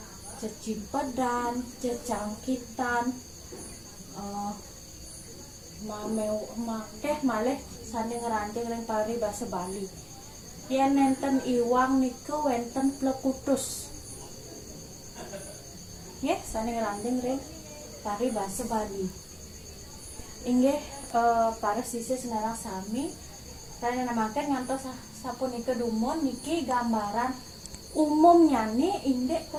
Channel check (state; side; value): identical; both; correlation 1.00